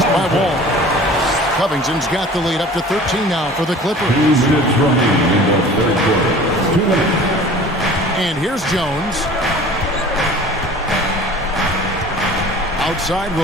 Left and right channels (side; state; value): both; normal; correlation 0.44